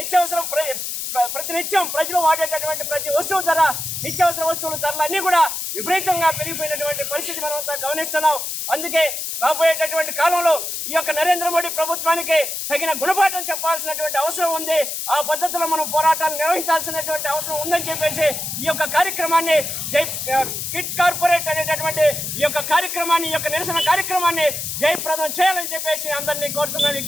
ప్రతినిత్యం ప్రజలు వాడేటటువంటి ప్రతి వస్తువు ధర, నిత్యావసర వస్తువుల ధరలు అన్నీ కూడా విపరీతంగా పెరిగిపోయినటువంటి పరిస్థితి మనం అంతా గమనిస్తున్నాం. అందుకే రాబోయేటటువంటి కాలంలో ఈ యొక్క నరేంద్ర మోడీ ప్రభుత్వానికి తగిన గుణపాఠం చెప్పాల్సినటువంటి అవసరం ఉంది. ఆ పద్ధతిలో మనం పోరాటాలు నిర్వహించాల్సినటువంటి అవసరం ఉందని చెప్పేసి ఈ యొక్క కార్యక్రమాన్ని కిట్ కార్పొరేట్ అనేటటువంటి ఈ యొక్క నిరసన కార్యక్రమాన్ని జయప్రదం చేయాలని చెప్పేసి అందరినీ కోరుతున్నాను,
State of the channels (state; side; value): noise; left; hiss, 4 dB below the sound